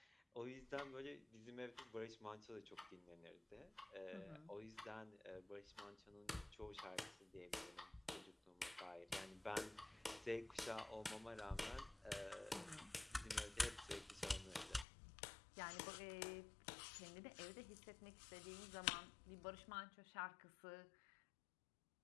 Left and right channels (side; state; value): right; drops out; at 14.9 s